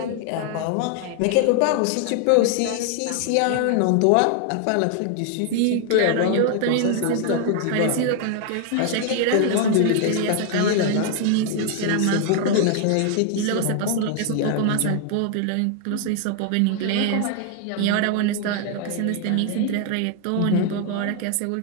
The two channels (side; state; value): both; different; correlation 0.00